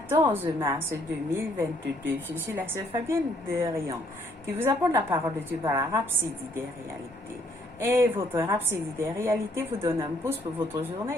mars 2022. Je suis la sœur Fabienne de Rion qui vous apporte la parole de Dieu par la Rhapsodie des réalités. Et votre Rhapsodie des réalités vous donne un pouce pour votre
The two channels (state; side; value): normal; both; correlation 0.67